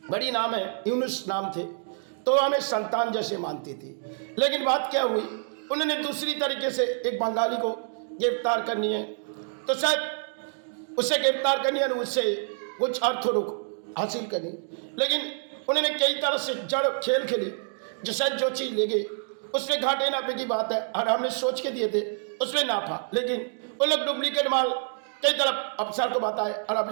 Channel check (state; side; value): silent; left; digital silence